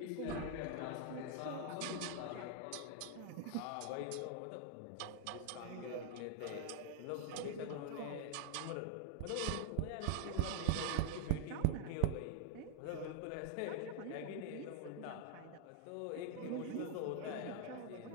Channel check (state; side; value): different; both; correlation -0.01